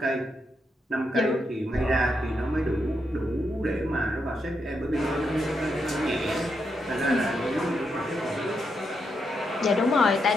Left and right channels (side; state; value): both; normal; correlation 0.82